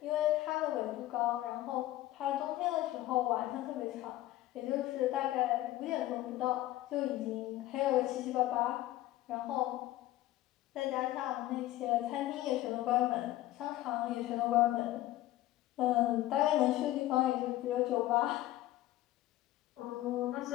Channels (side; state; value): right; quieter; 15.4 dB